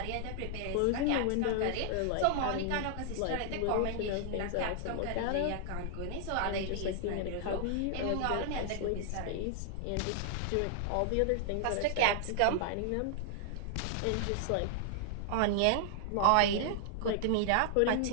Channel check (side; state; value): both; different; correlation -0.01